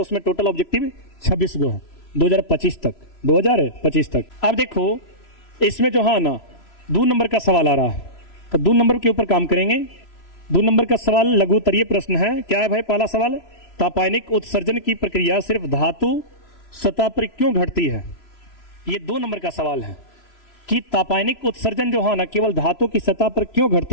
उसमें टोटल ऑब्जेक्टिव 26 गो है 2025 तक। अब देखो इसमें जो है ना 2 नंबर का सवाल आ रहा है, तो 2 नंबर के ऊपर काम करेंगे। 2 नंबर का सवाल लघु उत्तरीय प्रश्न है। क्या है भाई पहला सवाल? तापायनिक उत्सर्जन की प्रक्रिया सिर्फ धातु सतह पर क्यों घटती है? ये 2 नंबर का सवाल है कि तापायनिक उत्सर्जन जो है ना केवल धातु की सतह पर क्यों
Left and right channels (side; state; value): right; late; 3.0 ms